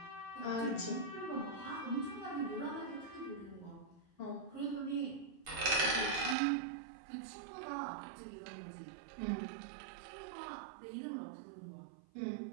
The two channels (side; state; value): left; drops out; at 6.4 s